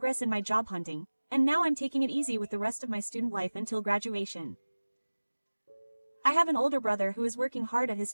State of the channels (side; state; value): both; inverted; correlation -1.00